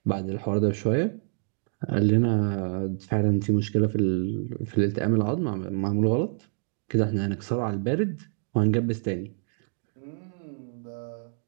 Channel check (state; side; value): silent; left; 60 dB below the other